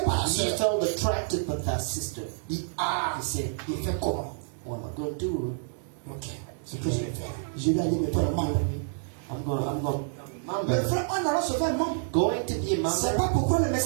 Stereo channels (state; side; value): silent; left; 59 dB below the other